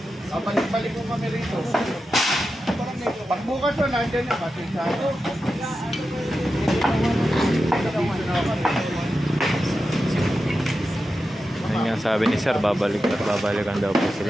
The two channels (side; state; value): both; normal; correlation 0.91